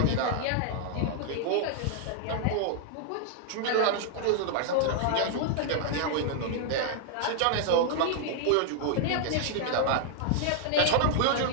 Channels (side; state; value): both; different; correlation 0.00